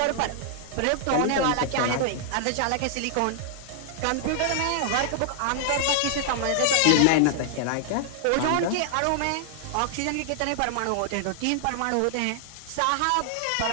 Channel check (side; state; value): both; different; correlation -0.01